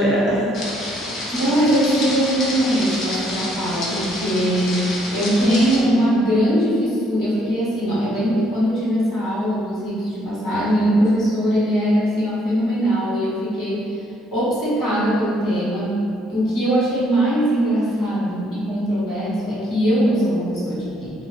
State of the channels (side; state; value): both; normal; correlation 0.69